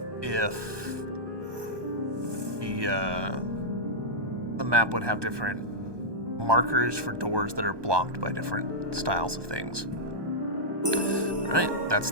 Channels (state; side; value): late; left; 1.2 ms